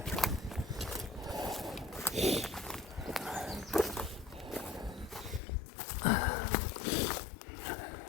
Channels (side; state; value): right; drops out; at 5.4 s